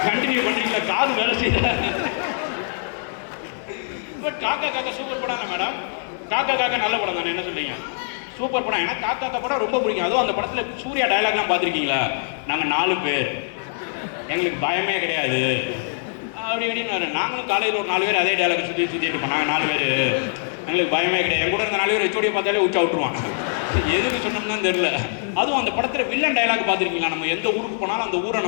கண்டினியூ பண்ணுறீங்களா? காது வேலை செய்யல. பட் காக்கா காக்கா சூப்பர் படம் இல்லை மேடம். காக்கா காக்கா நல்ல படம் தானே, என்ன சொல்றீங்க? சூப்பர் படம். ஏன்னா காக்கா காக்கா படம் ரொம்ப பிடிக்கும். அதுவும் அந்த படத்தில் சூர்யா டயலாக்லாம் பார்த்துருக்கீங்களா? நாங்கள் 4 பேர், எங்களுக்கு பயமே கிடையாது அப்படி அப்படின்னு. நாங்களும் காலையில் ஒரு 4 பேர் அதே டயலாக் சுற்றிட்டு இருப்போம். நாங்கள் 4 பேர், எங்களுக்கு பயமே கிடையாது. என் கூட இருந்த 4 பேர் வச்சோடைய பார்த்தாலே உச்சா விட்டுருவான். எதுக்கு சொன்னோம்னு தெரியல. அதுவும் அந்த படத்தில் வில்லன் டயலாக் பார்த்துருக்கீங்களா? நம்ம எந்த ஊருக்கு போனாலும் அந்த ஊரை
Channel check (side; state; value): right; silent; 57 dB below the other